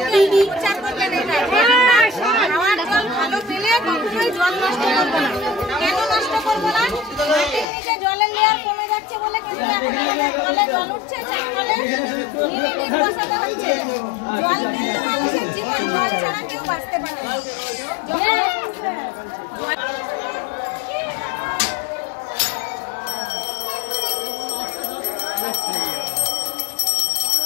প্রচার করবেন এটা খাওয়ার জল ভালো পেলে কখনোই জল নষ্ট করবো না। কেন নষ্ট করবো না? মাটির নিচে জলের লেয়ার কমে যাচ্ছে বলে কিন্তু জলে জল উঠছে, চারপালে নিমেটিক বসাতে হচ্ছে। জল কিন্তু মানুষের জীবন, জল ছাড়া কেউ বাঁচতে পারে না।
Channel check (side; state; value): right; drops out; at 7.7 s